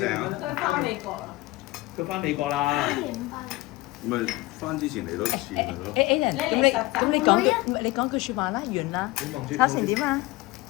啊！佢翻美國啦。佢翻美國啦。咪翻之前嚟多次咪咯。Aiden，咁你講句你講句説話啦，完啦。炒成點啊？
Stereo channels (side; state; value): right; quieter; 20.5 dB